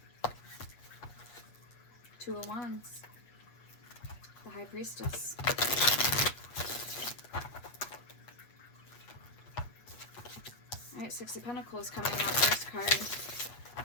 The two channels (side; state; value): right; late; 8.5 ms